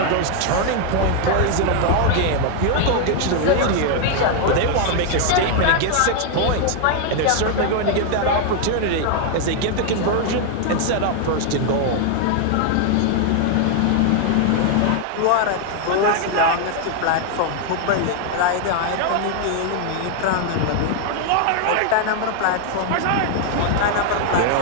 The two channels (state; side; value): different; both; correlation 0.00